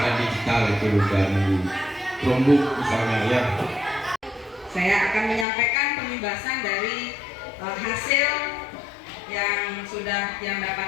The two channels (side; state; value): right; drops out; at 5.5 s